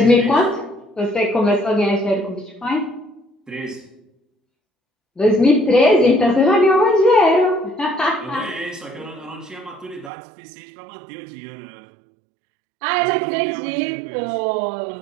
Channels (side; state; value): left; drops out; at 10.1 s